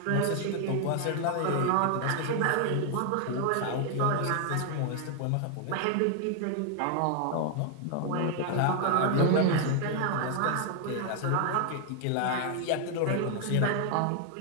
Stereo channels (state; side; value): different; both; correlation 0.00